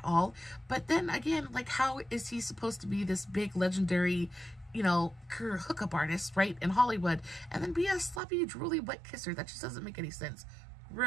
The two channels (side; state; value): left; drops out; at 8.2 s